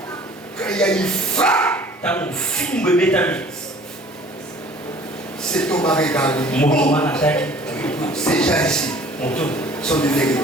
Quand il y a une frappe, cet homme a regardé. Ces gens ici sont de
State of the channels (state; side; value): normal; both; correlation 0.50